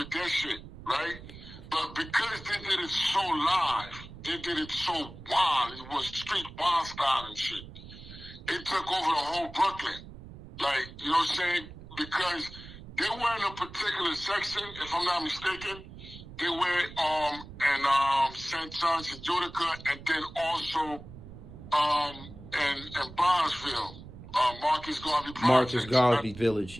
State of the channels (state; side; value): noise; right; rumble, 15 dB below the sound